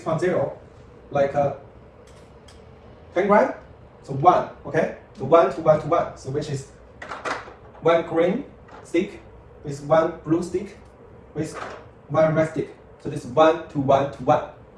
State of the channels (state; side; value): identical; both; correlation 1.00